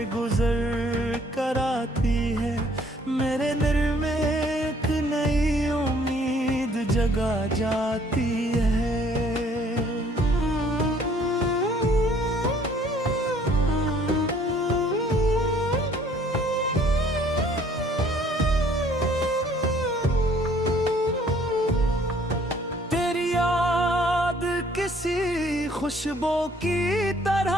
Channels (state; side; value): normal; both; correlation 0.59